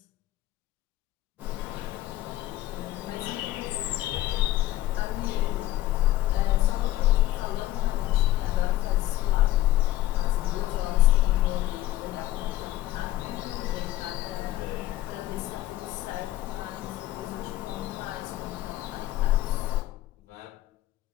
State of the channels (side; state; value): right; quieter; 15.2 dB